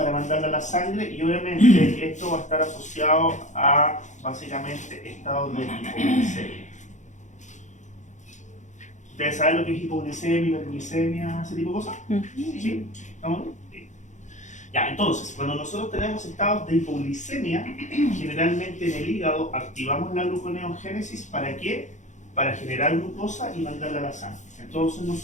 mandarla a la sangre, y obviamente esto va a estar asociado a básicamente estados de hipoglucemia. ¿Ustedes saben lo que es hipoglucemia, hiperglicemia, ese tipo de cosas? ¿Sí? ¿Estamos bien? Sí. Ya, entonces, cuando nosotros tenemos estados de hipoglicemia, generalmente en el hígado activamos la gluconeogénesis. ¿Para qué? Para generar glucosa y mandarla a la sangre. Entonces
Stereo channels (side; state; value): right; late; 0.35 ms